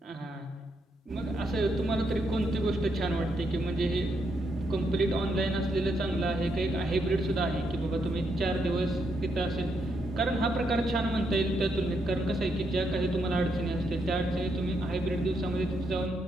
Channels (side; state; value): both; normal; correlation 0.78